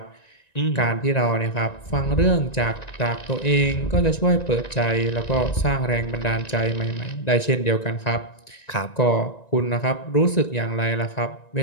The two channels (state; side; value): late; right; 1.9 ms